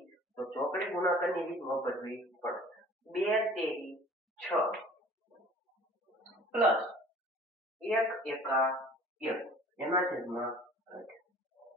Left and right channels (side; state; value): both; normal; correlation 0.48